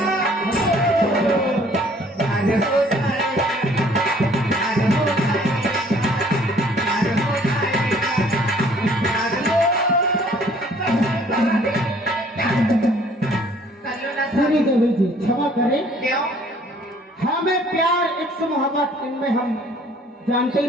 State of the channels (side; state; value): both; normal; correlation 0.58